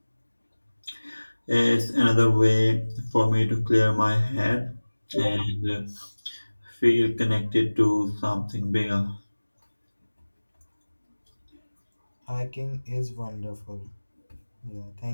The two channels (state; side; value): inverted; both; correlation -1.00